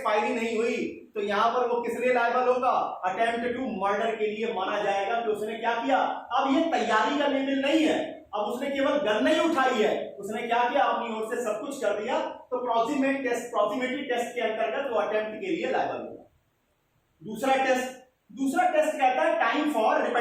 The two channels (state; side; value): identical; both; correlation 1.00